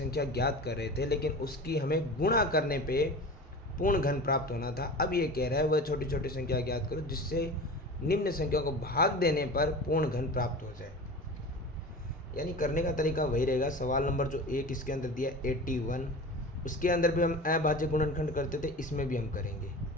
ज्ञात कर रहे थे, लेकिन उसकी हमें गुणा करने पे पूर्ण घन प्राप्त होना था। अब ये कह रहा है वह छोटी छोटी संख्या ज्ञात करो जिससे निम्न संख्या को भाग देने पर पूर्ण घन प्राप्त हो जाए। यानी करने का तरीका वही रहेगा। सवाल नंबर जो 1 इसके अंदर दिया 81, उसके अंदर भी हम अभाज्य गुणनखंड करते थे, इसमें भी हम करेंगे।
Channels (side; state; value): both; normal; correlation 0.34